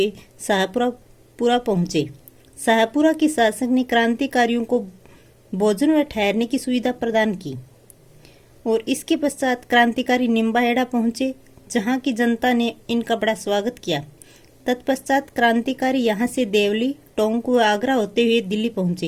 शाहपुरा पहुंचे। शाहपुरा के शासक ने क्रांतिकारियों को भोजन व ठहरने की सुविधा प्रदान की और इसके पश्चात क्रांतिकारी निम्बाहेड़ा पहुंचे, जहां की जनता ने इनका बड़ा स्वागत किया। तत्पश्चात क्रांतिकारी यहां से देवली, टोंक व आगरा होते हुए दिल्ली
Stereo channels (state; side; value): identical; both; correlation 1.00